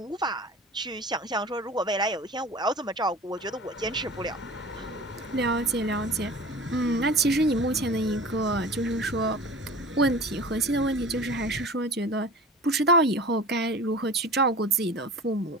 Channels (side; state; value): both; normal; correlation 0.39